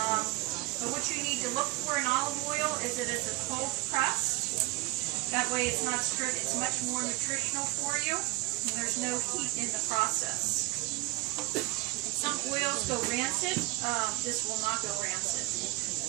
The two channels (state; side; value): quieter; left; 21.5 dB